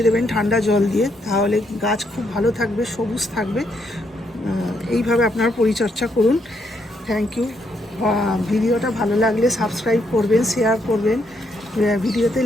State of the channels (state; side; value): normal; both; correlation 0.75